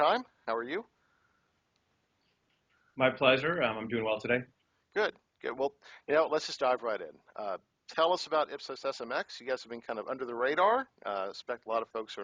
How are you? My pleasure. I'm doing well today. Good, good. Well, let's just dive right in. Tell us about IpsosSMX. You guys have been kind of under the radar. I expect a lot of folks are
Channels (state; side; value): identical; both; correlation 1.00